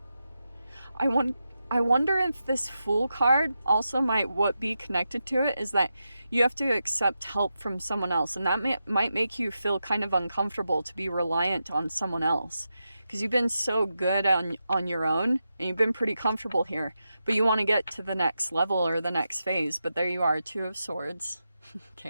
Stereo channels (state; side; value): inverted; both; correlation -0.88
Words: I wonder if this Fool card also might be connected to it is that you have to accept help from someone else, and that might make you feel kind of uncomfortable to be reliant on someone else, because you've been so good on your own and you've been pretty comfortable here, but you want to get to the next level or the next phase. But there you are, Two of Swords.